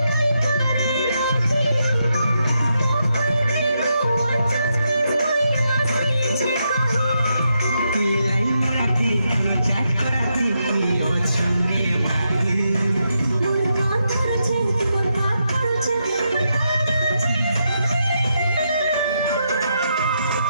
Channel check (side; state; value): both; inverted; correlation -0.83